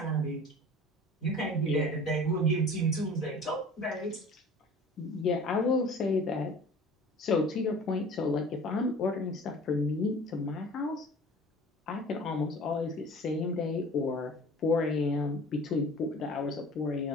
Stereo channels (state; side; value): normal; both; correlation 0.44